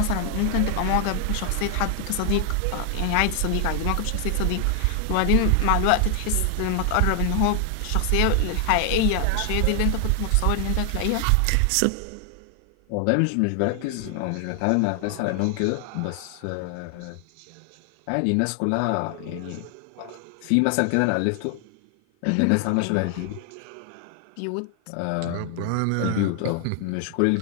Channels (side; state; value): both; different; correlation 0.00